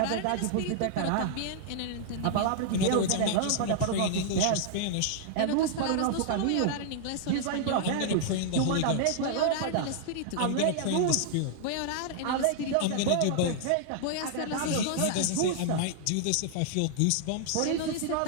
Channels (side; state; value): both; different; correlation -0.01